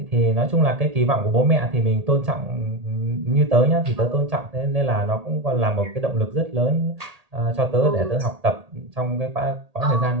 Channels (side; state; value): left; late; 1.8 ms